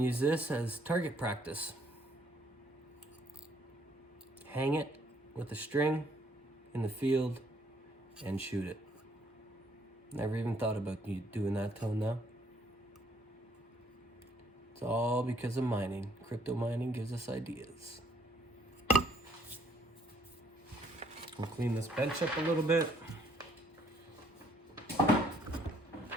use this as target practice. hang it with a string in the field and shoot it. Never even thought about you doing that till now. It's all because of mining. Crypto mining gives us ideas. We'll clean this bench up a little bit.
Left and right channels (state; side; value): normal; both; correlation 0.66